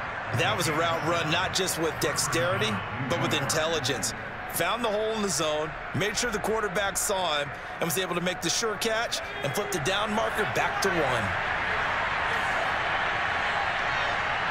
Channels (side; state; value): both; identical; correlation 1.00